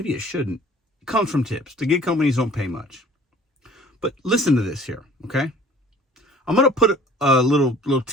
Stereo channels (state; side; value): normal; both; correlation 0.50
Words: it shouldn't, comes from tips. The gig companies don't pay much. But listen to this here, okay? I'm gonna put a little